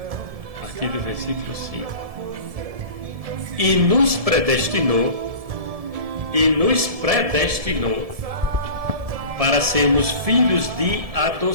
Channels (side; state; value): left; late; 1.7 ms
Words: A partir do versículo 5. E nos predestinou para sermos filhos de